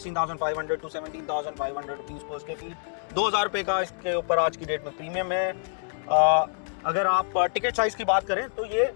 to 17,500 rupees per square feet. 2,000 रुपये का इसके ऊपर आज की डेट में प्रीमियम है. अगर आप टिकट साइज़ की बात करें तो ये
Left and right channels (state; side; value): silent; right; digital silence